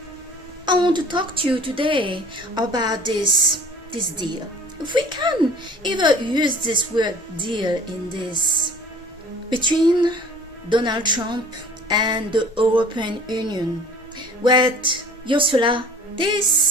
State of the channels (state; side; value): normal; both; correlation 0.49